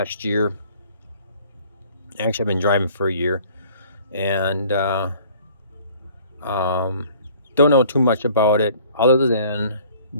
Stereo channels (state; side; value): inverted; both; correlation -0.54